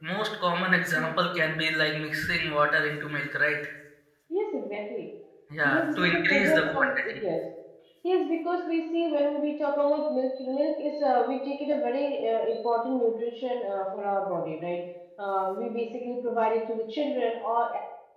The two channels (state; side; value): identical; both; correlation 1.00